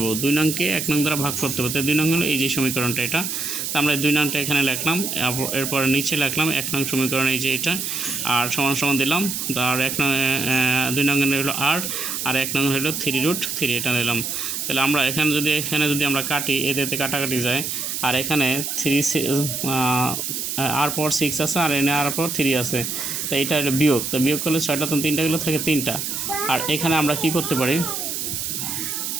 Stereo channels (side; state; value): right; noise; hiss, 3 dB below the sound